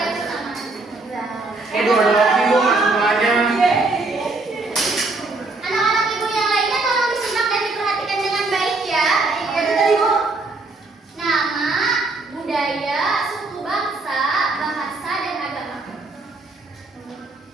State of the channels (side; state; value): left; quieter; 3.4 dB